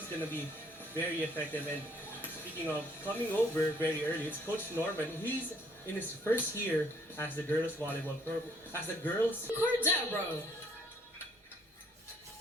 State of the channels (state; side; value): normal; both; correlation 0.64